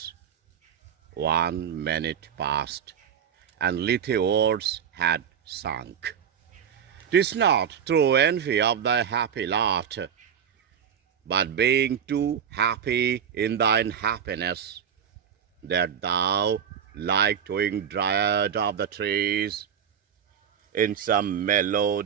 1 minute passed, and little words had sunk. 'Tis not through envy of thy happy lot, but being too happy in thine happiness, that thou, like twin dryad of the trees, in some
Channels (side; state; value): left; quieter; 8.2 dB